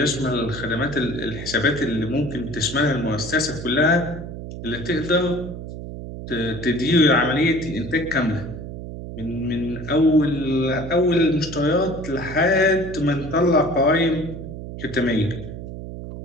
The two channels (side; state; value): right; noise; hum, 9 dB below the sound